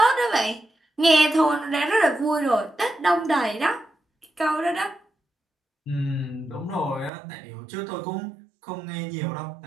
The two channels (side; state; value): left; drops out; at 7.1 s